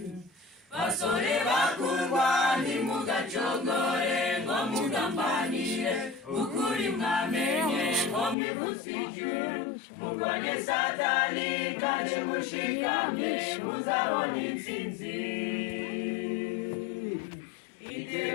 Basore bakundwa ntimugacogore ngo mugambanire ukuri mwamenye ngo mwivutse ijuru. Murwanye Satani kandi mushikamye muzabona intsinzi.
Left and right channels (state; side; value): drops out; right; at 8.3 s